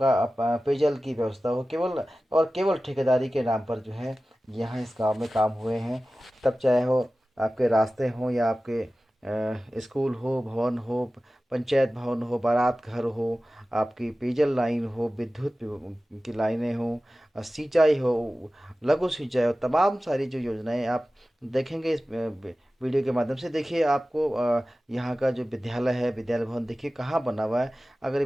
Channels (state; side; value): normal; both; correlation 0.96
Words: पेयजल की व्यवस्था हो, केवल और केवल ठेकेदारी के नाम पर जो है यहाँ इस गांव में काम हुए हैं। तब चाहे हो आपके रास्ते हों या आपके स्कूल हो, भवन हो, पंचायत भवन हो, बारात घर हो, आपकी पेयजल लाइन हो, विद्युत की लाइनें हो, सिंचाई हो, लघु सिंचाई हो, तमाम सारी जो योजनाएं आप देखेंगे इस वीडियो के माध्यम से। देखिए आपको यहाँ का जो विद्यालय है, विद्यालय भवन देखिए कहाँ बना हुआ है। अगर ये